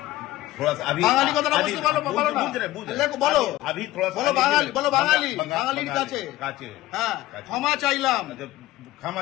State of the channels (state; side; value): quieter; right; 16.3 dB